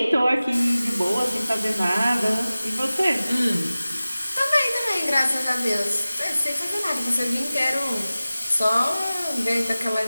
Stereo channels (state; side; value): inverted; both; correlation -0.97